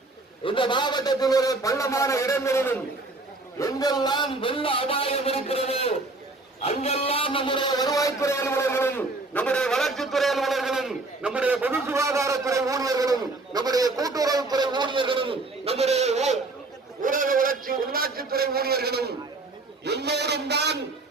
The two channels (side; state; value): left; quieter; 3.2 dB